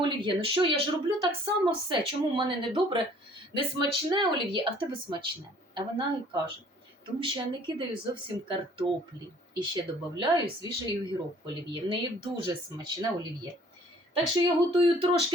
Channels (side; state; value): both; normal; correlation 0.55